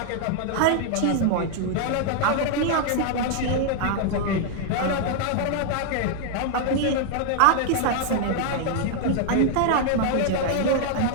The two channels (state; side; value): different; both; correlation 0.00